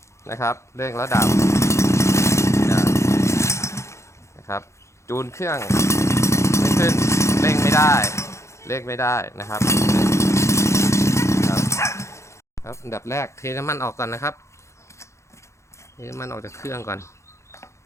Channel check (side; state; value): right; late; 0.14 ms